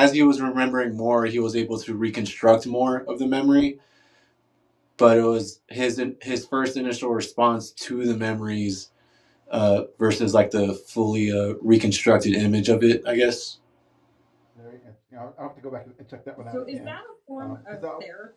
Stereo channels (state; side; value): identical; both; correlation 1.00